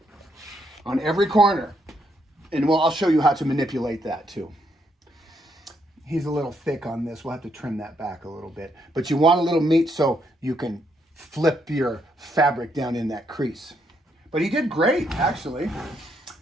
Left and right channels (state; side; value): normal; both; correlation 0.75